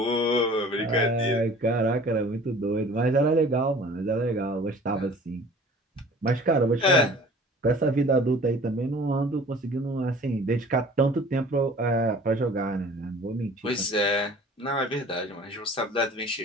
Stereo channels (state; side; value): normal; both; correlation 0.47